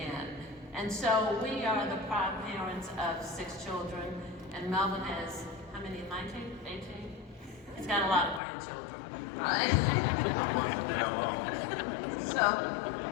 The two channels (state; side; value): drops out; right; at 8.4 s